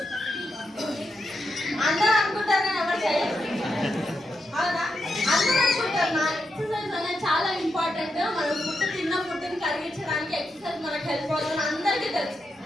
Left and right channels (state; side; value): normal; both; correlation 0.85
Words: అందరూ అనుకుంటారు కానీ ఎవరు చేయరు. అవునా? అందరూ అనుకుంటారు నా ఎక్సర్సైజ్ అనేది చాలా ఇంపార్టెంట్, మనం ఫుడ్ తిన్న ఫుడ్ని కరిగించడానికి ఎక్సర్సైజ్ మనకు హెల్ప్ అవుతుంది అందరికీ తెలుసు.